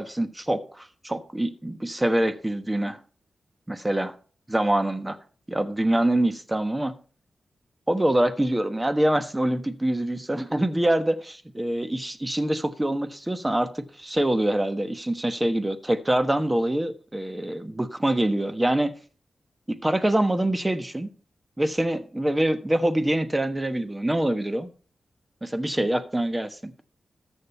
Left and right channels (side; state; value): both; normal; correlation 0.98